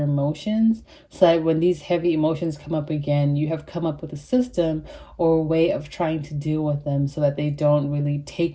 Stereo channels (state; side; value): identical; both; correlation 1.00